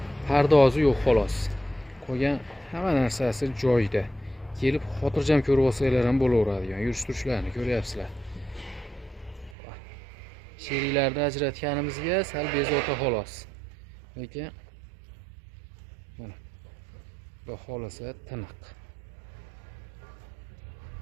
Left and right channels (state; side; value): drops out; left; at 9.6 s